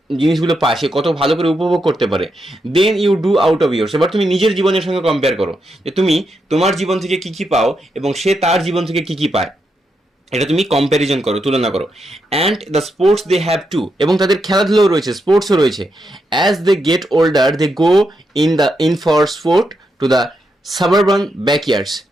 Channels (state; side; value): normal; both; correlation 0.83